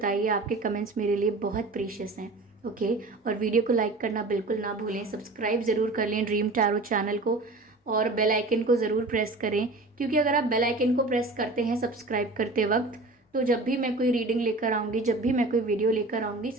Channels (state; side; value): quieter; left; 3.1 dB